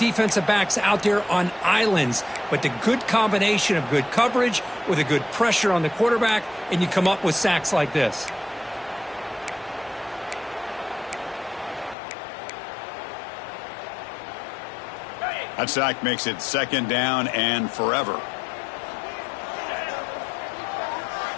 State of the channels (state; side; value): drops out; right; at 12.0 s